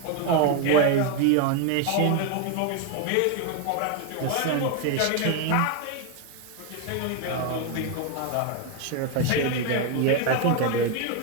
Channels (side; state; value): both; different; correlation 0.01